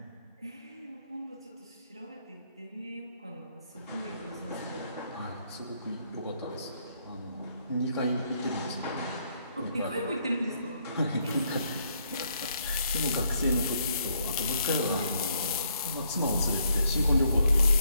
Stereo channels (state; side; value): inverted; both; correlation -0.72